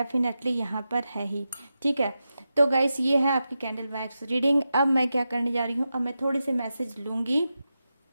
यहाँ पर है ही, ठीक है। तो गाइस, ये है आपकी कैंडल वैक्स रीडिंग। अब मैं क्या करने जा रही हूँ, अब मैं थोड़ी सी मैसेज लूँगी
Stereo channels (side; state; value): both; inverted; correlation -0.90